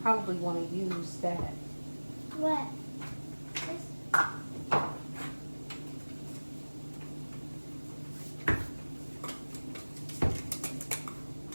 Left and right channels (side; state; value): both; inverted; correlation -1.00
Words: probably want to use that. What? This?